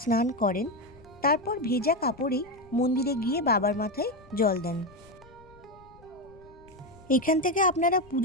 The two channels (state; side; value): noise; left; rumble, 25 dB below the sound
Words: স্নান করেন, তারপর ভেজা কাপড়েই মন্দিরে গিয়ে বাবার মাথায় জল দেন। এখান থেকে আপনারা